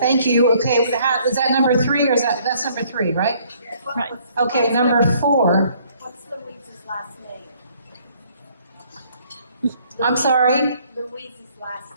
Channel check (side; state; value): both; inverted; correlation -0.63